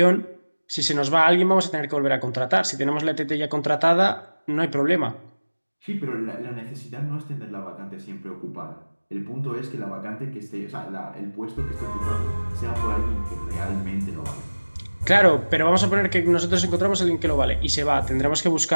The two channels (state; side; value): inverted; both; correlation -1.00